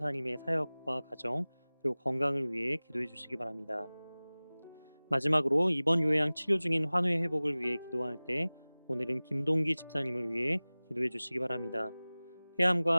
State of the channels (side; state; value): both; inverted; correlation -0.99